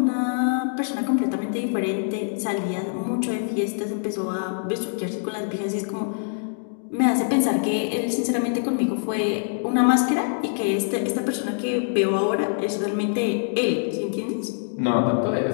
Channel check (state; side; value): silent; right; digital silence